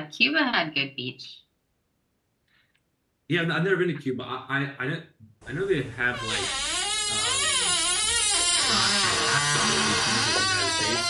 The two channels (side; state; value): both; identical; correlation 1.00